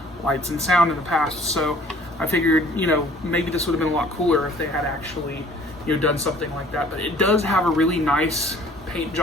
lights and sound in the past. So I figured, maybe this would have been a lot cooler if they had actually, done something like that. But it does have a really nice paint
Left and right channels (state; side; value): normal; both; correlation 0.53